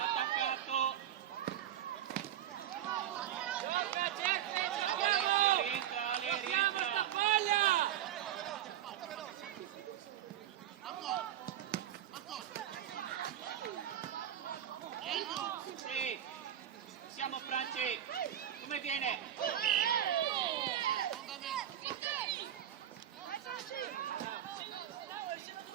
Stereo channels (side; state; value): left; quieter; 11.2 dB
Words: Attaccato. Rientra. Sì. Siamo Franci. Come viene?